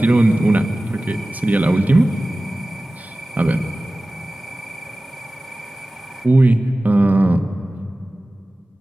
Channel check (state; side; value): normal; both; correlation 0.97